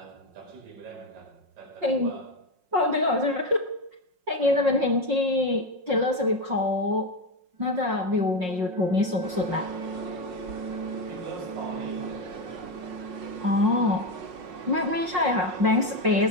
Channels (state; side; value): late; left; 5.5 ms